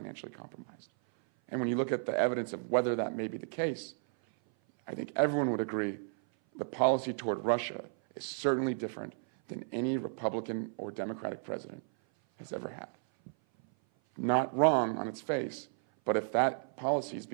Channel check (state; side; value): silent; left; 56 dB below the other